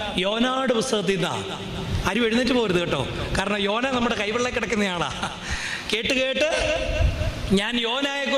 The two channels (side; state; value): both; identical; correlation 1.00